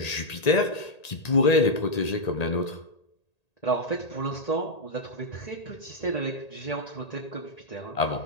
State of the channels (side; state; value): right; late; 1.8 ms